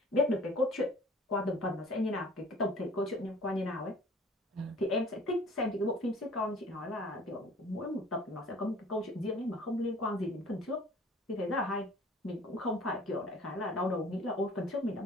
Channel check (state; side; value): normal; both; correlation 0.50